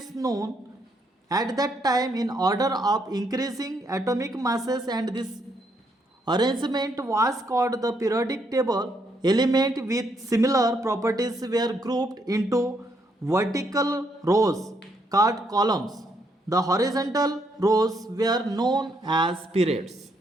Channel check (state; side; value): normal; both; correlation 0.74